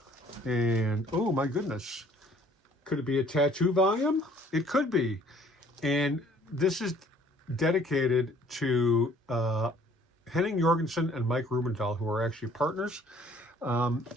And oh my goodness, could it be a tattoo volume? It could be. And this is dedicated to Henning Jorgensen and Mike Rubendall, who are actually partners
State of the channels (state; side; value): normal; both; correlation 0.57